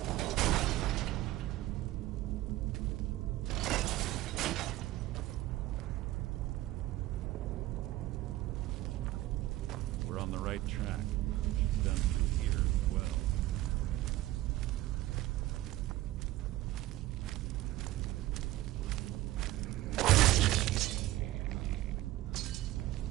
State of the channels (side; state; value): left; quieter; 16.2 dB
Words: We're on the right track. Done through here as well.